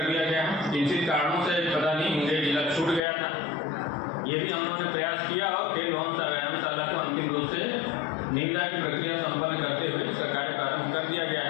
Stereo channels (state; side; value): drops out; right; at 3.0 s